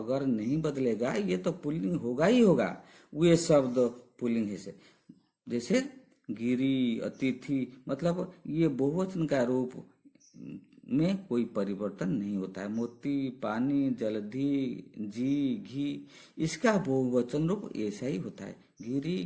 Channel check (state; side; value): identical; both; correlation 1.00